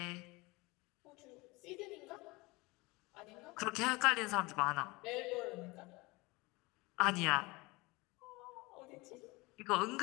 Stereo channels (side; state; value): right; quieter; 23.9 dB